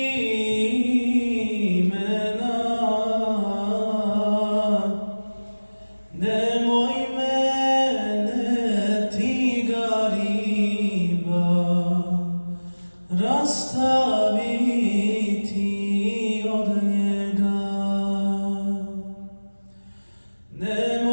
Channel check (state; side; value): inverted; both; correlation -1.00